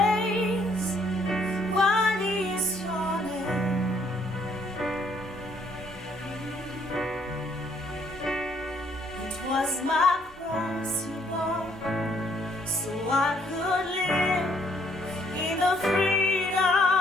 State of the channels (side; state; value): both; normal; correlation 0.67